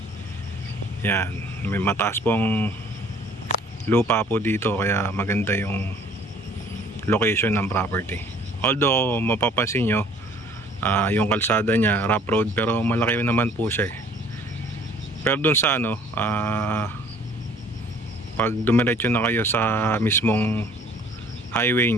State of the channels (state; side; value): normal; both; correlation 0.55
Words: Yan, may mataas pong lupa po dito kaya maganda yung location ng property. Although mapapansin nyo, yung kalsada niya rough road pero malaki naman po siya pero dun sa pag dumiretso na kayo sa mismong highway